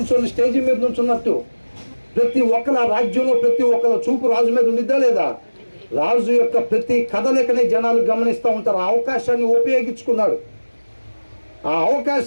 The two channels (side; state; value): both; inverted; correlation -1.00